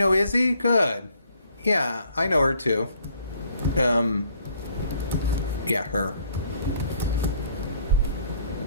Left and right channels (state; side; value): inverted; both; correlation -0.62